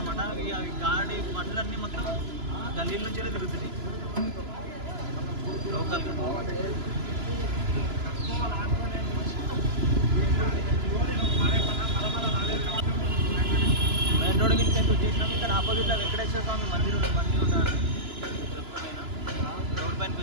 అవి గాడి బండ్లన్నీ మొత్తం గల్లీల నుంచే తిరుగుతున్నాయి లోకల్గా. మెయిన్ రోడ్ మీద వచ్చేసినాం. ఇక్కడ ఆపోజిట్లో వెంకటేశ్వర స్వామి మందిరం ఉంటారు. రోడ్ పైనకి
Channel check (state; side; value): late; left; 3.0 ms